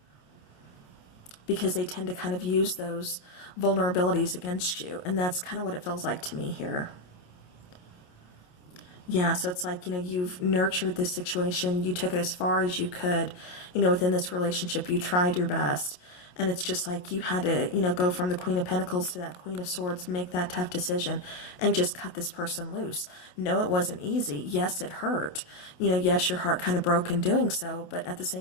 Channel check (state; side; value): late; right; 28 ms